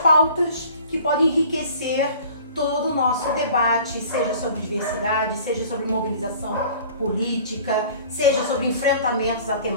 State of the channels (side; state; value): both; inverted; correlation -0.47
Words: que podem enriquecer todo o nosso debate, seja sobre diversidade, seja sobre mobilização política, seja sobre enfrentamentos a